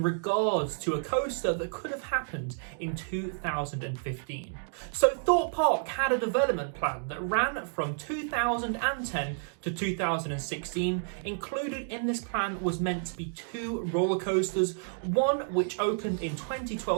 regards to a coaster that could have happened in 2015. So Thorpe Park had a development plan that ran from 2010 to 2016. Included in this plan was meant to be two roller coasters, one which opened in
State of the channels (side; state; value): left; silent; digital silence